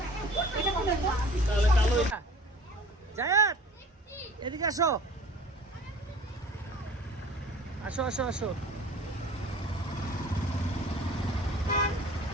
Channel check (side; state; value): both; normal; correlation 0.45